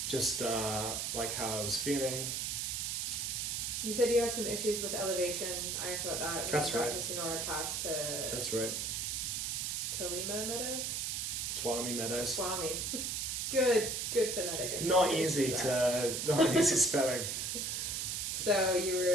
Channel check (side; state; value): right; noise; hiss, 1 dB below the sound